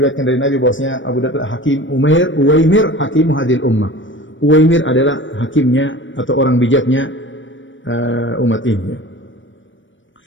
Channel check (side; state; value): right; late; 0.56 ms